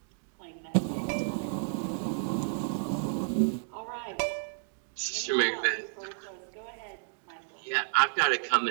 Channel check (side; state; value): left; silent; digital silence